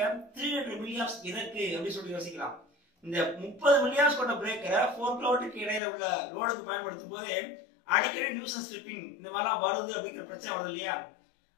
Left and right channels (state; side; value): drops out; right; at 5.8 s